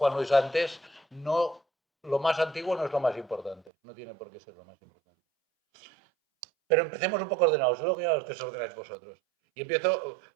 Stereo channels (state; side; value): drops out; left; at 3.7 s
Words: Luis antes, lo más antiguo no es lo más importante, no tiene por qué ser lo más importante. Pero empecemos un poco ordenados, luego ya os desordenáis vosotros. Y empiezo